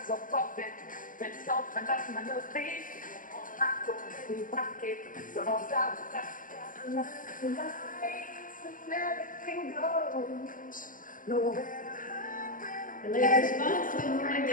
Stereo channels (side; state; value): right; late; 0.39 ms